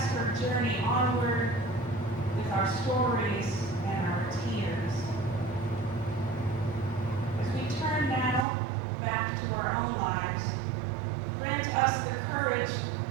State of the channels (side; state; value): left; drops out; at 8.5 s